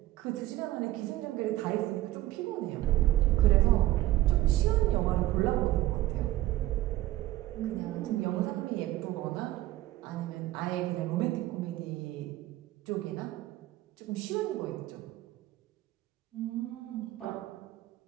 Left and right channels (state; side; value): quieter; left; 15.7 dB